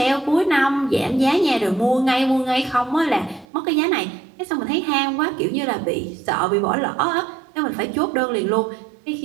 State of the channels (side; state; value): left; drops out; at 3.5 s